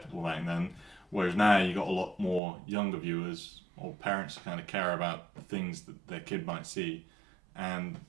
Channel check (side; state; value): left; drops out; at 2.4 s